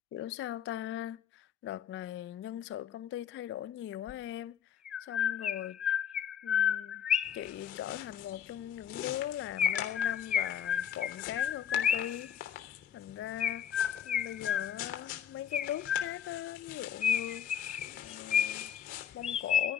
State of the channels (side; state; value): right; quieter; 9.1 dB